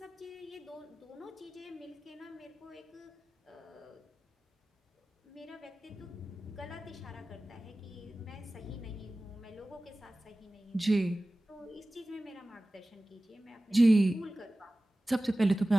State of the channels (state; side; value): normal; both; correlation 0.97